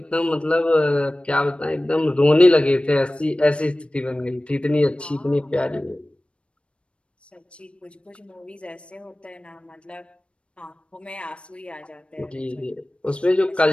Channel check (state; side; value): late; right; 0.059 ms